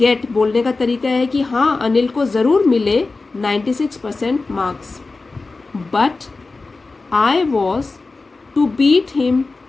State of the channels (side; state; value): right; quieter; 3.7 dB